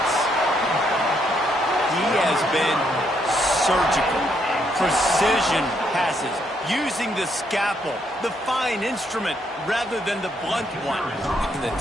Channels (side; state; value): both; normal; correlation 0.74